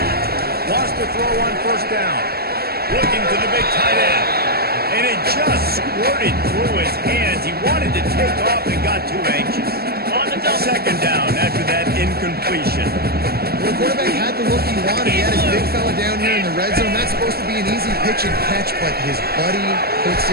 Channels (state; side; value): late; left; 0.45 ms